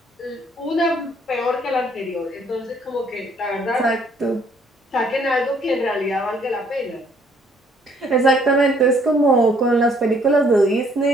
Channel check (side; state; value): both; normal; correlation 0.64